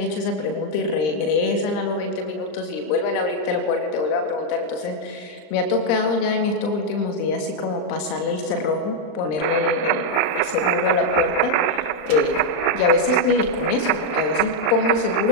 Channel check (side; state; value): right; late; 39 ms